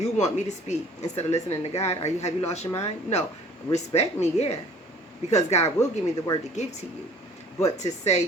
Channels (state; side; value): normal; both; correlation 0.51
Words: want me to speak instead of listening to God. Have you lost your mind? No. Respect me, yeah, because God will give me the word to give to you. But to say